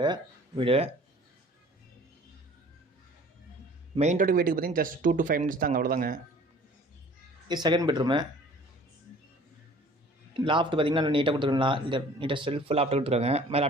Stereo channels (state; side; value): normal; both; correlation 0.50